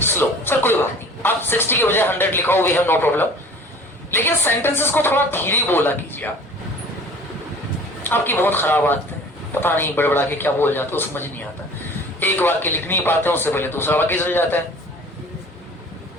slow. Sir कोई बात नहीं, आप 60 के बजाय 100 लिखाओ, वी हैव नो प्रॉब्लम, लेकिन सेंटेंसेस को थोड़ा धीरे बोला कीजिए। आपकी बहुत खराब आदत है, पता नहीं बड़बड़ा के क्या बोल जाते हो, समझ नहीं आता। एक वाक्य लिख नहीं पाते, उससे पहले दूसरा वाक्य चल जाता है।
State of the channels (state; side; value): normal; both; correlation 0.45